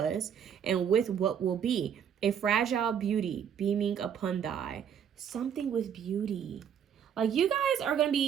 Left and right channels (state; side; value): quieter; left; 8.4 dB